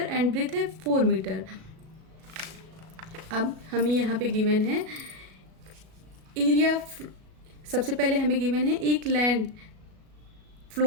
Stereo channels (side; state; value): left; late; 37 ms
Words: एंड ब्रेथ है 4 मीटर। अब हमें यहाँ पे गिवन है एरिया। सबसे पहले हमें गिवन है एक लैंड